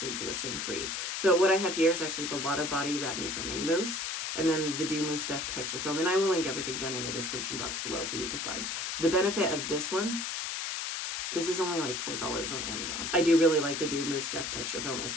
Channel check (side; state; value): left; noise; hiss, 3 dB below the sound